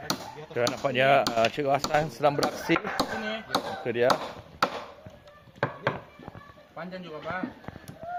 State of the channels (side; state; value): both; identical; correlation 1.00